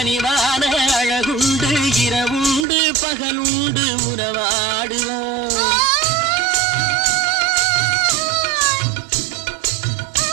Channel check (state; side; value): drops out; left; at 2.7 s